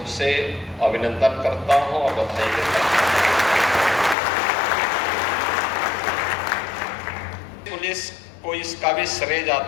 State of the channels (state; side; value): drops out; right; at 4.2 s